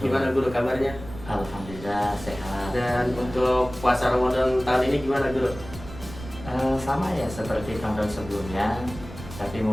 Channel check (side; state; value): right; noise; rumble, 13 dB below the sound